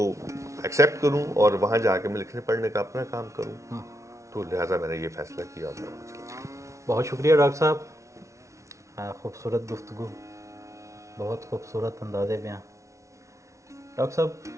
ایکسیپٹ کروں اور وہاں جا کے میں لکھنے پڑھنے کا اپنا کام کروں. تو لہٰذا میں نے یہ فیصلہ کیا. بہت شکریہ ڈاکٹر صاحب، خوبصورت گفتگو، بہت خوبصورت انداز بیاں. ڈاکٹر صاحب،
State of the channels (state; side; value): late; left; 0.14 ms